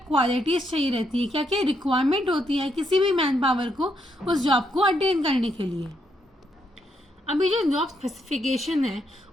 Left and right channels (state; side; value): normal; both; correlation 0.76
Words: चाहिए रहती है, क्या क्या रिक्वायरमेंट होती है किसी भी मैन पावर को उस जॉब को अटेन करने के लिए। अभी जो जॉब स्पेसिफिकेशन है